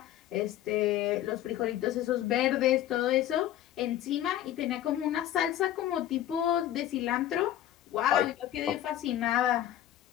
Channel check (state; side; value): quieter; right; 12.4 dB